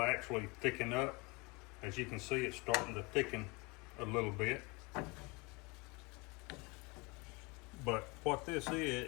actually thicken up. As you can see, it's starting to thicken a little bit. But what this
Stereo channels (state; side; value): quieter; right; 26.9 dB